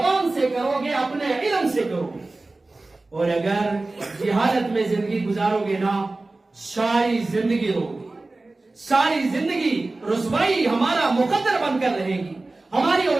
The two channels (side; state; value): left; quieter; 3.2 dB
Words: سے کرو گے، اپنے علم سے کرو گے، اور اگر جہالت میں زندگی گزارو گے نا، ساری زندگی رو گے، ساری زندگی رسوائی ہمارا مقدر بن کر رہے گی، ہماری